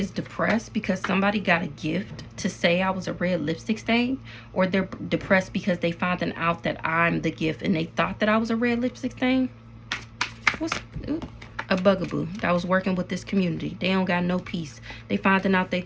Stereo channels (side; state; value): both; identical; correlation 1.00